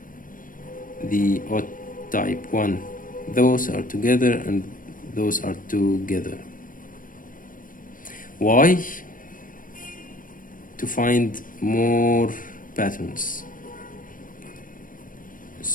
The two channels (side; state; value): right; late; 0.40 ms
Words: the odd type 1. Those are together and those are together. Why? To find more patterns.